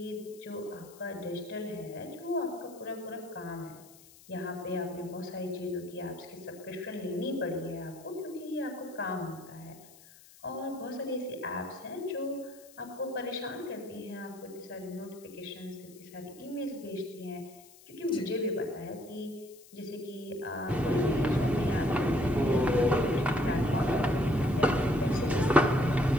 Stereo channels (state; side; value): noise; left; hiss, 22 dB below the sound